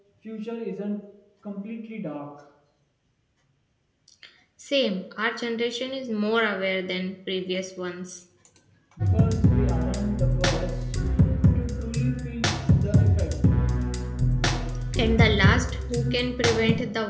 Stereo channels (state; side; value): identical; both; correlation 1.00